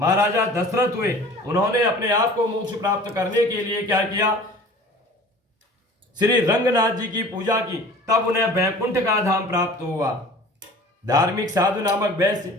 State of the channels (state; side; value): normal; both; correlation 0.44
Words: दशरथ हुए। उन्होंने अपने आप को मोक्ष प्राप्त करने के लिए क्या किया, श्री रंगनाथ जी की पूजा की, तब उन्हें वैकुंठ का धाम प्राप्त हुआ। धार्मिक साधु नामक वैश्य